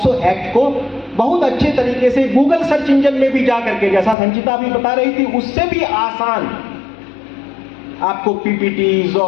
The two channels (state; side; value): drops out; right; at 4.2 s